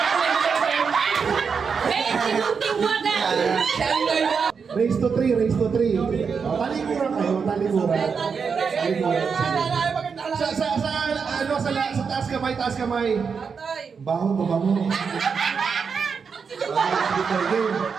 Race to 3. Talikuran kayo, talikuran. Sa taas kamay. Baho, babango.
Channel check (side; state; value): left; quieter; 5.8 dB